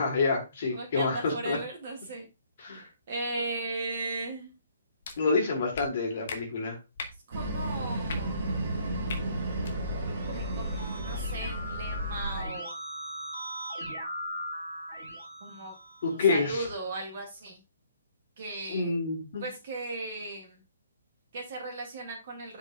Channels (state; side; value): inverted; both; correlation -0.64